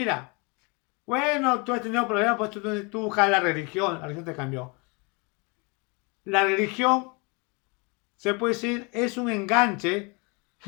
bueno, tú has tenido problemas, pues tú buscas la religión te cambió. La religión, se puede decir, es un enganche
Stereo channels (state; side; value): quieter; right; 30.3 dB